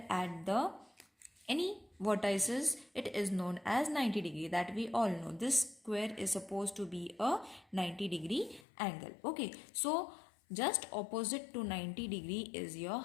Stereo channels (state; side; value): drops out; right; at 8.7 s